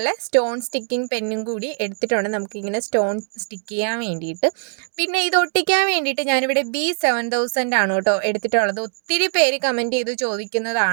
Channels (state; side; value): silent; left; digital silence